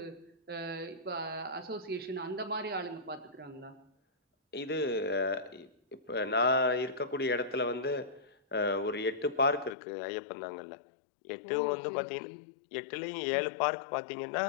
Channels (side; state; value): right; drops out; at 9.8 s